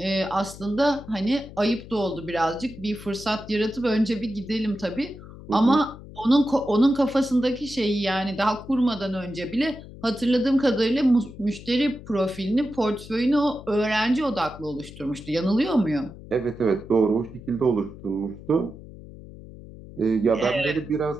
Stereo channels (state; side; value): noise; left; hum, 16 dB below the sound